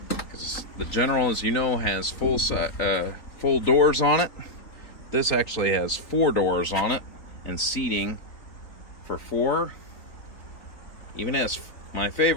because the General, as you know, has full doors on it. This actually has 4 doors on it and seating for 4. Even has my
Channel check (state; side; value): late; right; 3.9 ms